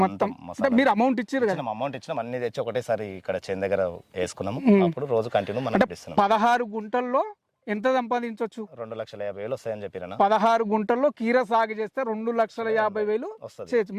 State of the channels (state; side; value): identical; both; correlation 1.00